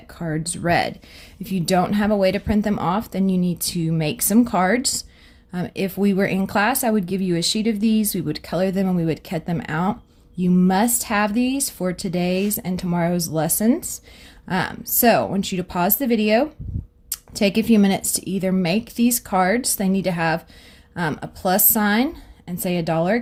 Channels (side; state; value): both; identical; correlation 1.00